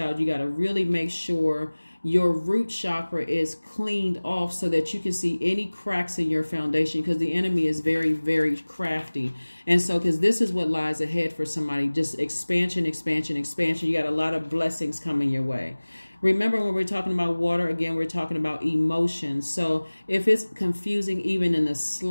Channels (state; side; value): inverted; both; correlation -1.00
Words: You got to really make sure your root chakra is cleaned off so that you can see any cracks in your foundation, because the enemy is very, very crafty. And so, because this is what lies ahead for somebody, just expansion, expansion, expansion. You got a lot of blessings coming your way. Remember, when we're talking about water, again, we're talking about emotions. So if it's confusing even in the